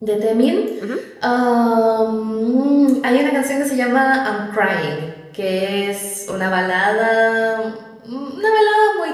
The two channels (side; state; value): both; identical; correlation 1.00